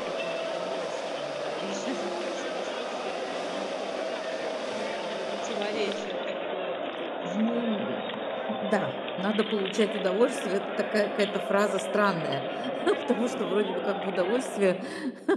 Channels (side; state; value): both; identical; correlation 1.00